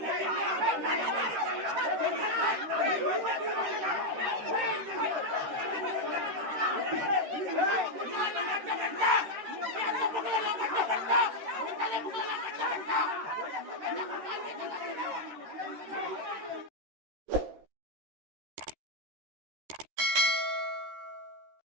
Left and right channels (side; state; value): left; late; 13 ms